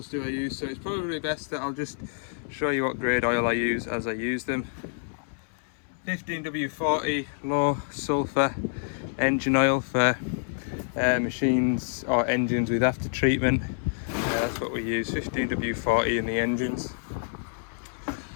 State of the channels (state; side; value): silent; right; 60 dB below the other